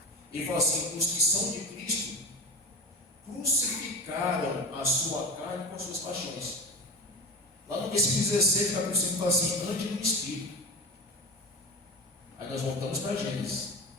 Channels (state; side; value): normal; both; correlation 0.28